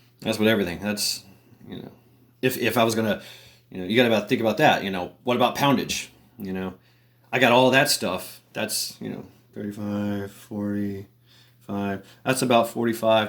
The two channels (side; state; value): both; identical; correlation 1.00